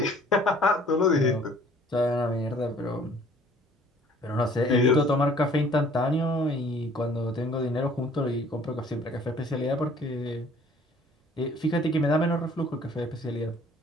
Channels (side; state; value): both; normal; correlation 0.55